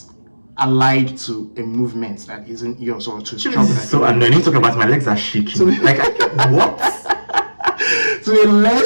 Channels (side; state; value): both; inverted; correlation -1.00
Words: allied to a movement that isn't yours, or to struggle. So annoying. Talking about, my legs are shaking. Like, what?